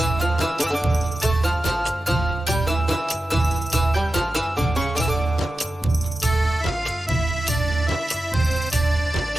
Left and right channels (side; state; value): both; normal; correlation 0.92